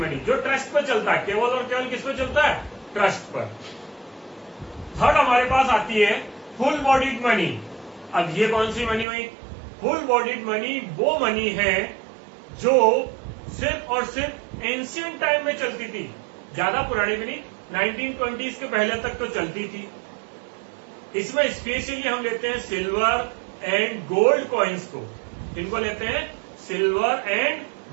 जो ट्रस्ट पर चलता है। केवल और केवल किस पर चलता है? ट्रस्ट पर। थर्ड हमारे पास आती है फुल बॉडीड मनी। अब ये कौन सी मनी हुई? फुल बॉडीड मनी वो मनी है जो सिर्फ और सिर्फ एंशियंट टाइम में चलती थी, ज्यादा पुरानी भी नहीं, 1920s के पहले तक तो चलती थी। इसमें स्पेशली हम लेते हैं सिल्वर एंड गोल्ड कॉइन्स को। इनको लेते हैं सिल्वर एंड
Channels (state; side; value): drops out; left; at 9.1 s